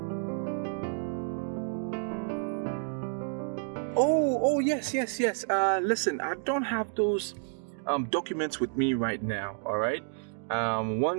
Oh, yes. Listen, I don't have those documents with me right now, all right?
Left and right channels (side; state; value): left; silent; digital silence